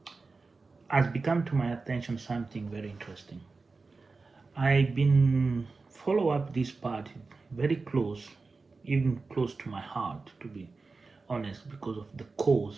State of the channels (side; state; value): left; quieter; 4.0 dB